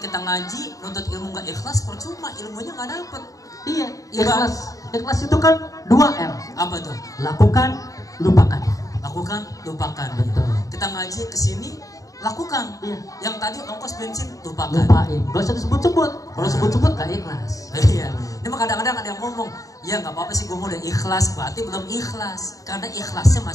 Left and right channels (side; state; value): right; late; 0.16 ms